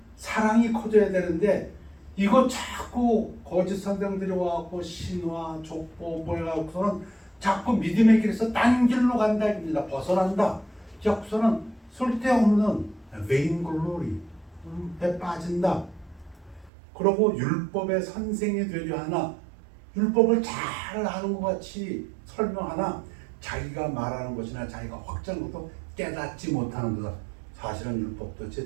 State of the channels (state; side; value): drops out; left; at 16.7 s